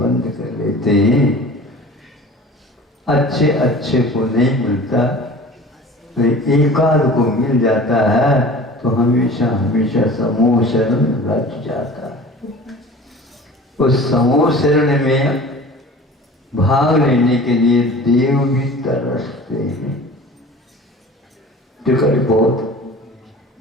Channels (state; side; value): normal; both; correlation 0.41